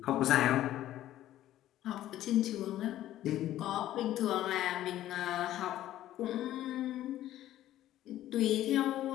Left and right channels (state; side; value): quieter; right; 13.4 dB